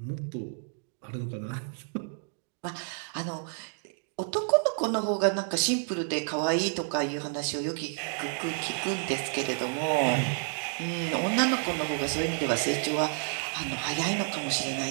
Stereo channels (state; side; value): silent; left; 58 dB below the other